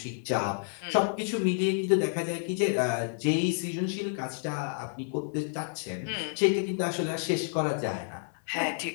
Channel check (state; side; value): silent; right; 58 dB below the other